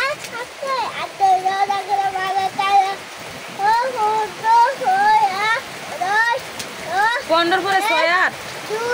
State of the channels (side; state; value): both; identical; correlation 1.00